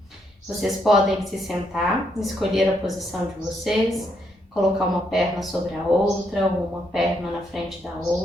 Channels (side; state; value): both; normal; correlation 0.76